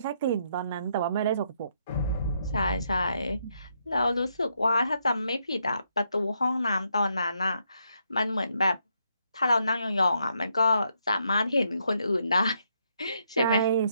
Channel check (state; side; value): inverted; both; correlation -0.77